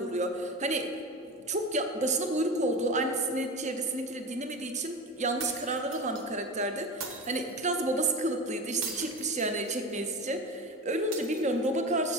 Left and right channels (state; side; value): normal; both; correlation 0.27